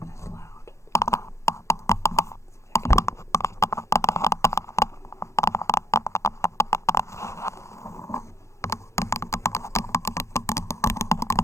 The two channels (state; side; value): late; right; 0.14 ms